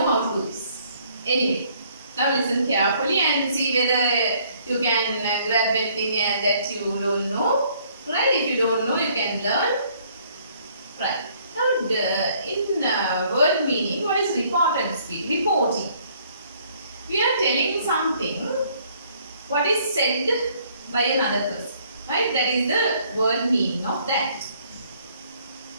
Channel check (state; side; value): inverted; both; correlation -0.63